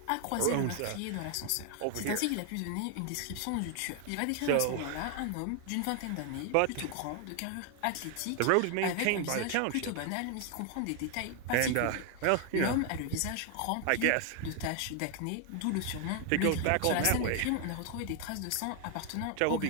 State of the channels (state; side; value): different; both; correlation 0.00